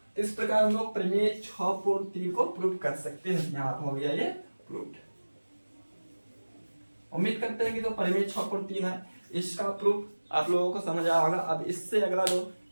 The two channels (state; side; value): inverted; both; correlation -1.00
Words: इस प्रकार हम लोग प्रमेय 6.3 को प्रूव कर सकते हैं। यहाँ हो गया ये प्रूव्ड। उम्मीद करते हैं कि तो प्रमेय 6.3 है, इसका प्रूफ आप लोगों को समझ आया होगा। अब इससे अगला जो